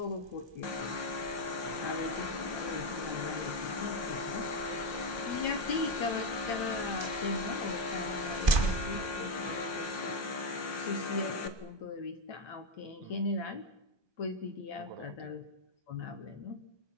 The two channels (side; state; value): left; late; 1.2 ms